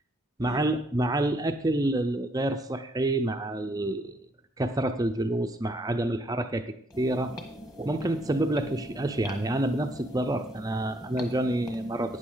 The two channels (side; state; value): both; normal; correlation 0.69